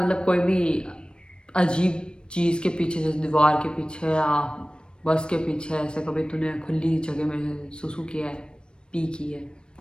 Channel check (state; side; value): late; right; 0.053 ms